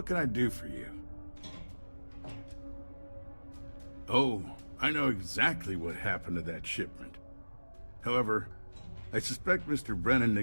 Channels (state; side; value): inverted; both; correlation -1.00